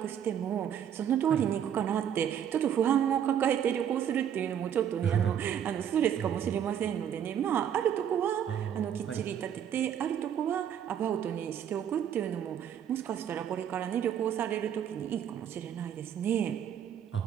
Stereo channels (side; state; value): left; quieter; 9.2 dB